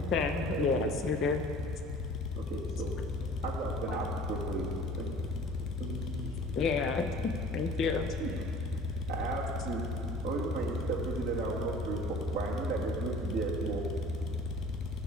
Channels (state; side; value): normal; both; correlation 0.47